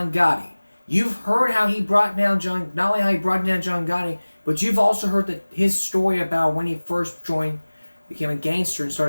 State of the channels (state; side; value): inverted; both; correlation -1.00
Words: Gotti. You've heard how he brought down not only how he brought down John Gotti, but you've also heard his story about when he first became a gangster and